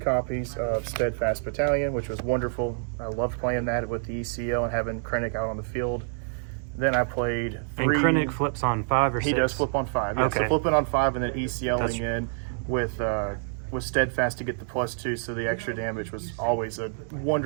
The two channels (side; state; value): left; silent; digital silence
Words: of Steadfast Battalion, which was wonderful. I loved playing that with the ECL and having Krennic out on the field. Then I played 3. And Krennic flips on 5 or 6? He does flip on 5. Yeah. Okay. So flipping on 5 and then ECLing in with Steadfast to get the +2, so the extra damage was always a